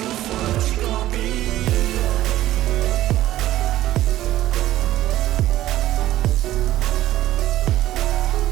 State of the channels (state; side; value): quieter; left; 14.4 dB